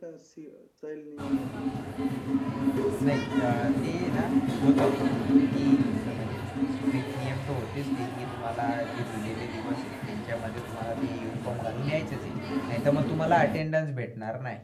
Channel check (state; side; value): identical; both; correlation 1.00